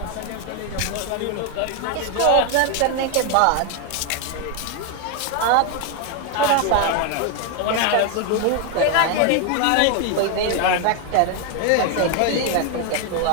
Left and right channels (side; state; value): both; different; correlation 0.01